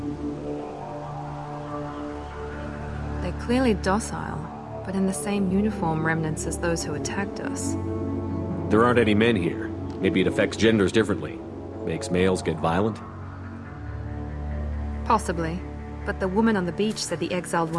They're clearly docile, but in the same uniform remnants as those who attacked us. There aren't any men here. Maybe it affects genders differently. Makes males get violent? Possibly. But the woman on the beach said the exiled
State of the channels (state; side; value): identical; both; correlation 1.00